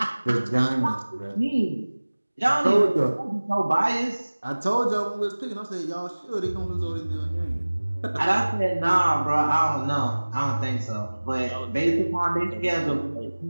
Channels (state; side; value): inverted; both; correlation -1.00